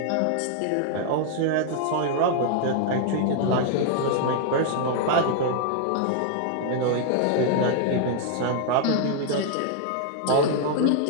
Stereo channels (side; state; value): both; different; correlation 0.00